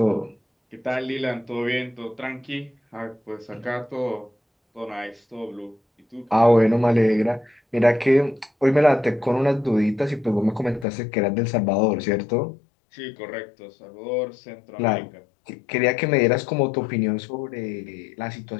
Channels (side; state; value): right; drops out; at 10.9 s